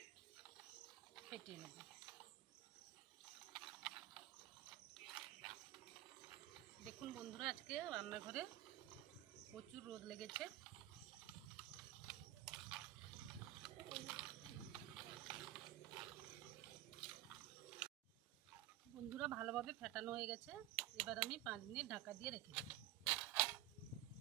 ফেটিয়ে নেব। দেখুন বন্ধুরা, আজকে রান্নাঘরে প্রচুর রোদ লেগেছে। বন্ধুরা, ভালোভাবে ফেটানো হয়ে গেছে। এবার আমি 5 মিনিট ঢাকা দিয়ে রেখে দেব।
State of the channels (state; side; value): quieter; left; 14.3 dB